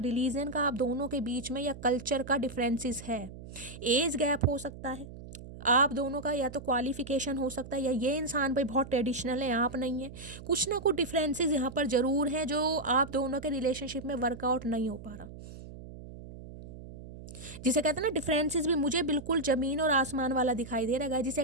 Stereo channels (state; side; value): noise; right; hum, 14 dB below the sound